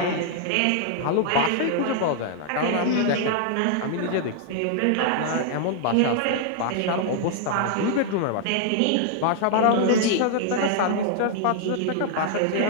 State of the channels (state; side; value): different; both; correlation -0.01